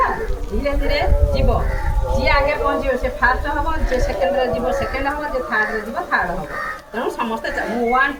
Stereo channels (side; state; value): both; identical; correlation 1.00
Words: ଧୀରେ ଧୀରେ ଯିବ, ଯିଏ ଆଗେ ପହଞ୍ଚିବ ସେ ଫାର୍ଷ୍ଟ ହେବ, ଯିଏ ସେକେଣ୍ଡରେ ଯିବ ସେକେଣ୍ଡ ହେବ, ଯିଏ ଥାର୍ଡ଼ରେ ଯିବ ଥାର୍ଡ଼ ହେବ। ତେଣୁ ସମସ୍ତେ ମୁଁ 1